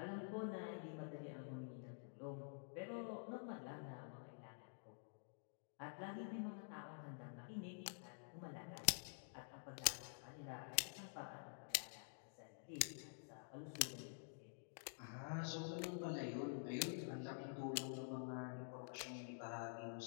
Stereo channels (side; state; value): right; silent; digital silence